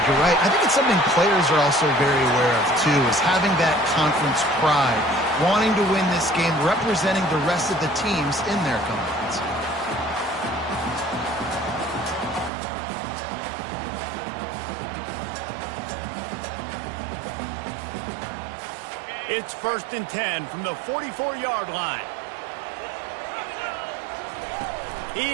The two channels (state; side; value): drops out; left; at 12.5 s